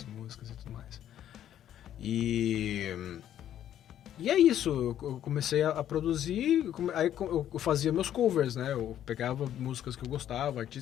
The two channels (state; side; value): quieter; right; 11.0 dB